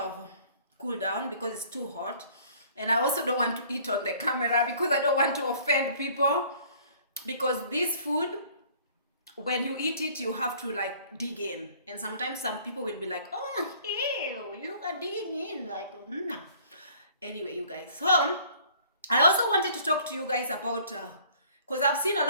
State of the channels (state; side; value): inverted; both; correlation -0.55